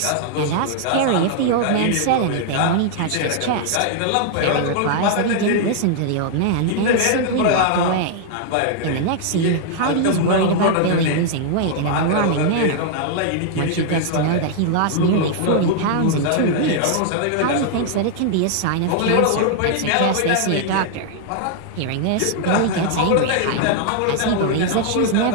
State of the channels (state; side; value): different; both; correlation -0.01